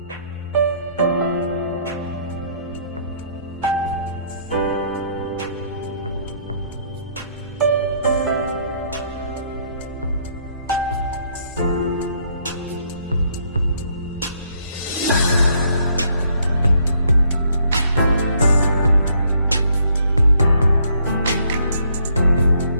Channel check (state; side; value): inverted; both; correlation -0.68